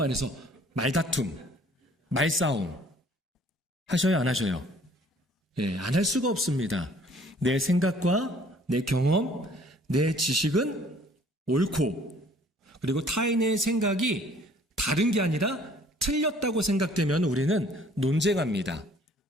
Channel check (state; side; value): normal; both; correlation 0.56